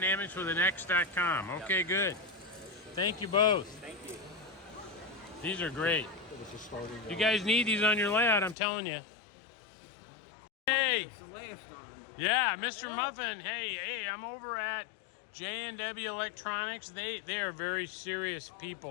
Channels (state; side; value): drops out; right; at 8.6 s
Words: Okay, good. Thank you both. Thank you. These are great. You guys need these on your layout, I'm telling you. Hey. It's the last on. Yeah, Mr. Muffin. Hey, I'm over at J&W Electronics. They are very serious